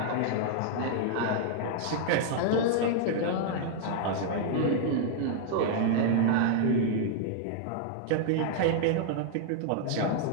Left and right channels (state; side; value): different; both; correlation -0.01